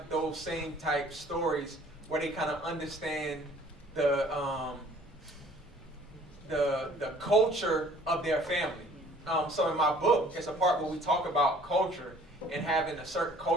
those same type stories where they kind of understand the culture of their family. So in my book, it's a part where we talk about culture and having a certain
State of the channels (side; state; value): both; normal; correlation 0.54